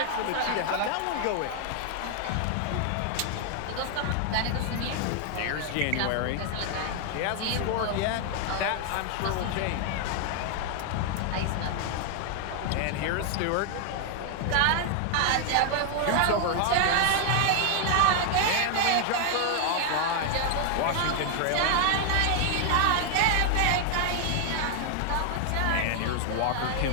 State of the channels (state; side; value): different; both; correlation 0.00